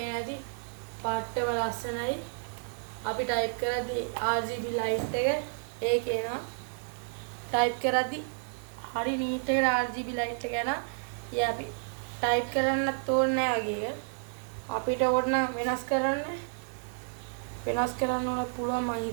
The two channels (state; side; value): silent; left; digital silence